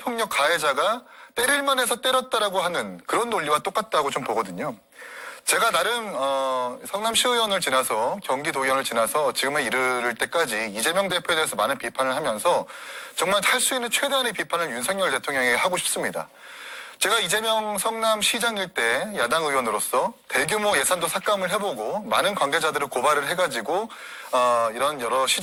가해자가 때릴만 해서 때렸다라고 하는 그런 논리와 똑같다고 좀 보거든요. 제가 나름 성남시의원을 지나서 경기도의원을 지나서 지금에 이르를 때까지 이재명 대표에 대해서 많은 비판을 하면서 정말 할 수 있는 최대한의 비판을 윤석열 대통령에게 하고 싶습니다. 제가 이재명 성남시장일 때 야당 의원으로서 대규모 예산도 삭감을 해보고 많은 관계자들을 고발을 해가지고 이런 여러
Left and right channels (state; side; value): identical; both; correlation 1.00